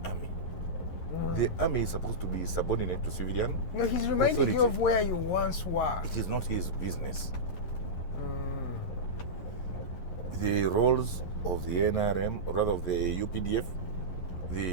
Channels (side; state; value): right; late; 11 ms